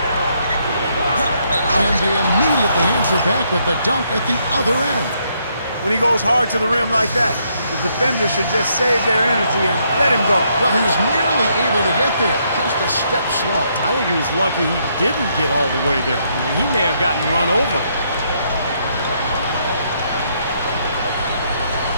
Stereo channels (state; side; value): inverted; both; correlation -0.73